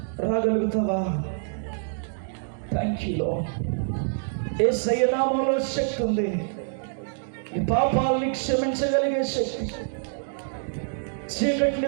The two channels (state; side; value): silent; left; digital silence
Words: రాగలుగుతావా? Thank you lord. యేసయ్య నామములో శక్తి ఉంది. నీ పాపాలని క్షమించగలిగే శక్తి,